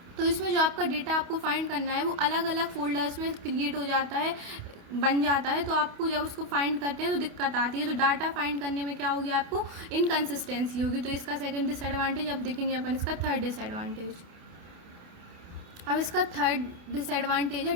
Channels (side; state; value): left; late; 28 ms